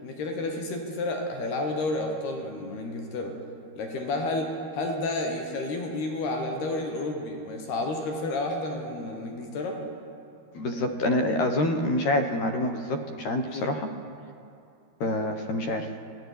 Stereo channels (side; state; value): right; late; 13 ms